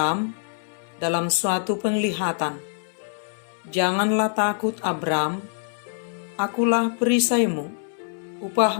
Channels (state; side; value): silent; right; 62 dB below the other